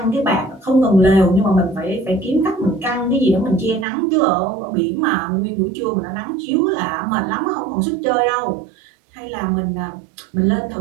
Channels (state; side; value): drops out; left; at 3.9 s